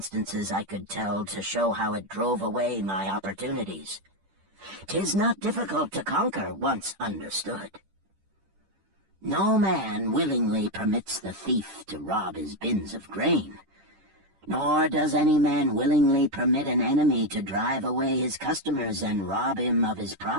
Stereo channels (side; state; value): left; late; 10 ms